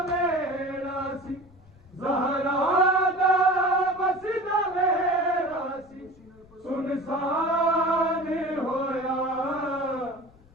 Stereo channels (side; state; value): left; noise; rumble, 28 dB below the sound